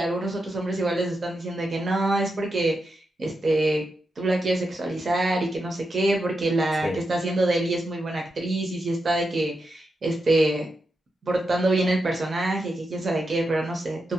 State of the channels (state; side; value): normal; both; correlation 0.86